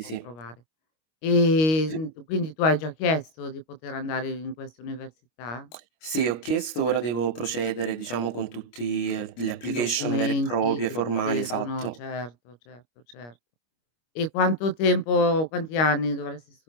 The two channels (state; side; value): late; right; 25 ms